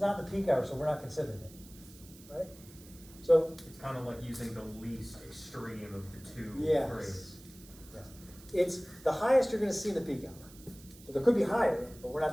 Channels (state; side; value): noise; right; hiss, 21 dB below the sound